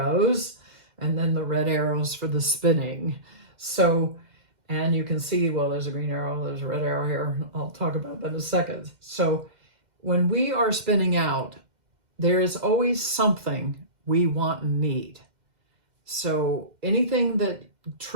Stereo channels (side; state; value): left; late; 2.1 ms